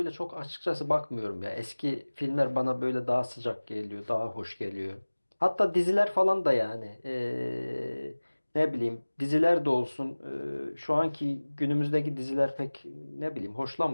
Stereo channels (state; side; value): inverted; both; correlation -1.00